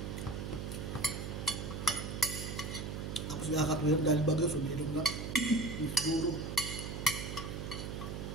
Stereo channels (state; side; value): noise; right; hum, 5 dB below the sound